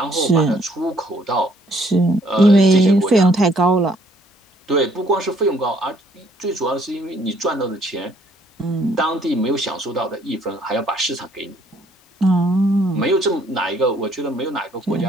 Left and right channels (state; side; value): normal; both; correlation 0.64